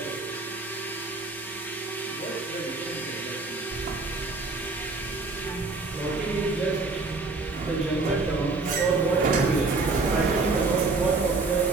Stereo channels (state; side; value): quieter; left; 3.6 dB